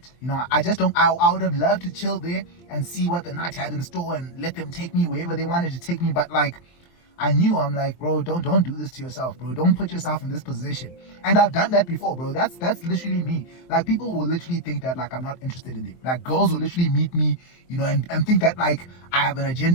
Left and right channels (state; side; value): late; right; 23 ms